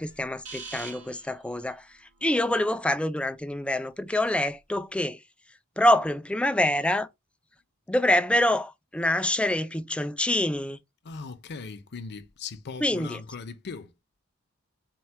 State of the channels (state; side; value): normal; both; correlation 0.77